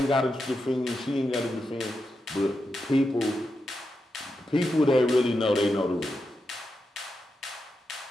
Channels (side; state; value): both; normal; correlation 0.87